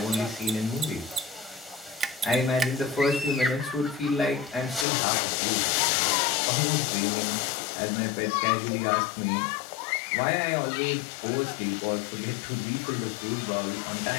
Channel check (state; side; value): drops out; right; at 4.9 s